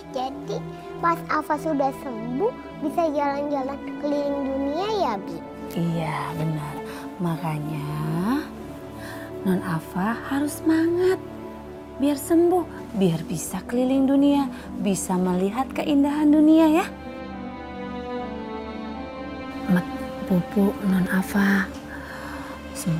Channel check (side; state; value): both; identical; correlation 1.00